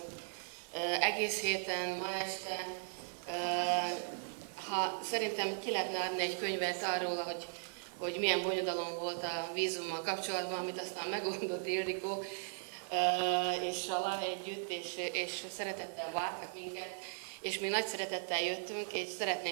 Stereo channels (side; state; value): left; silent; digital silence